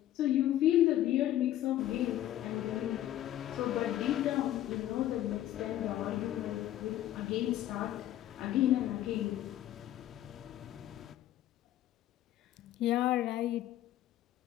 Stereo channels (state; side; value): quieter; right; 13.0 dB